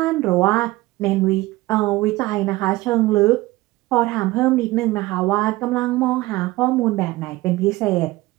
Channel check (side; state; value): left; quieter; 19.3 dB